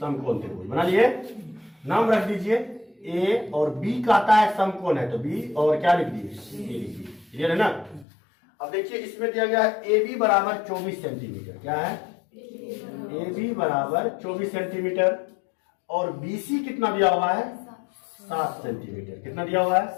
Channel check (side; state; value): right; drops out; at 8.1 s